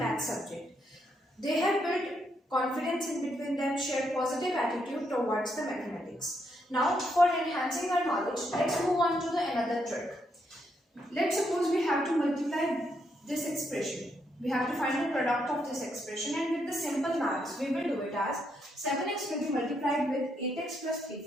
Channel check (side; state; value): both; normal; correlation 0.77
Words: subject. They have built confidence in between them, share positive attitude towards the mathematics. Now for enhancing our knowledge, let's move on to another trick. Let's suppose we have to multiply this expression. We have to find the product of this expression, and with the simple maths, we will do it as 7x will be multiplied with 8x plus 3